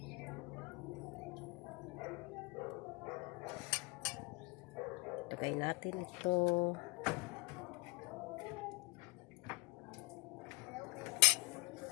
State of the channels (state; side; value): quieter; right; 27.4 dB